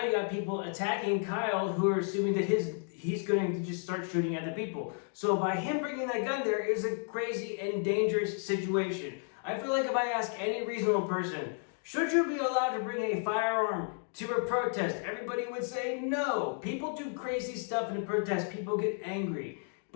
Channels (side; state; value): right; silent; 56 dB below the other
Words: you got people attacking Kyle who are assuming that he's going to just start shooting at the people. So by him bringing that gun there is a crazy and dangerous situation. I feel like if I ask any reasonable person, should you be allowed to bring a firearm to a protest? Everybody would say no. People do crazy stuff in a protest. People get angry.